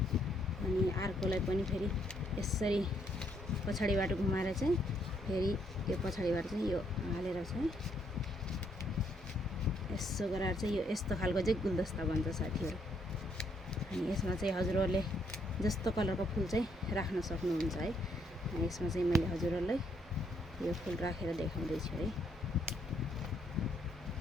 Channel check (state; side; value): normal; both; correlation 0.72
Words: अर्कोलाई पनि फेरि यसरी पछाडिबाट घुमाएर चाहिँ फेरि यो पछाडिबाट चाहिँ यो हालेर चाहिँ यसो गरेर चाहिँ यो यस्तो खालको चाहिँ गुलदस्ता बन्छ साथीहरु। अनि यसमा चाहिँ हजुरहरुले जस्तो कलरको फूल चाहिँ राख्न सक्नुहुन्छ है। अनि यसमा चाहिँ मैले हजुरहरुलाई यो फूल राखेर देखाउँदै छु है।